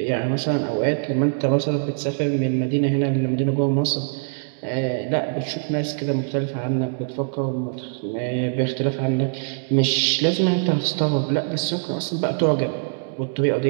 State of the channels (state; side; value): silent; left; digital silence